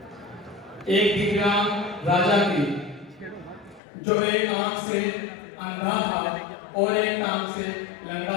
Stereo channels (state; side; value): drops out; right; at 3.8 s